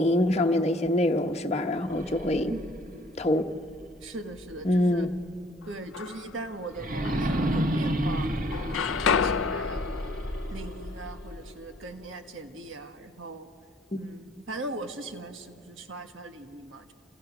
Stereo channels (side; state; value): both; normal; correlation 0.58